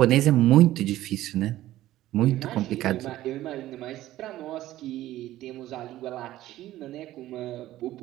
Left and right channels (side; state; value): left; quieter; 14.8 dB